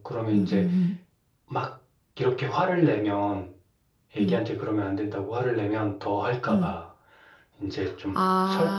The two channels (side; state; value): both; identical; correlation 1.00